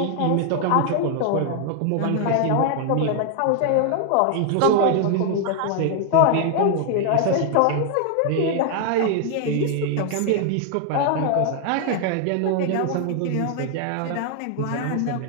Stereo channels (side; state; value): both; different; correlation 0.00